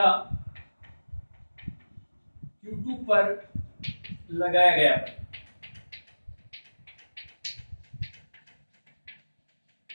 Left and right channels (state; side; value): inverted; both; correlation -1.00